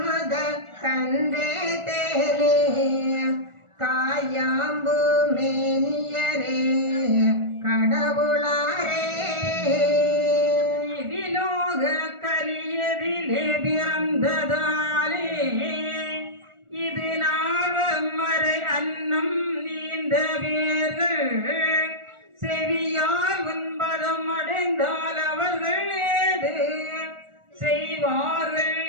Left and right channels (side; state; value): left; late; 1.4 ms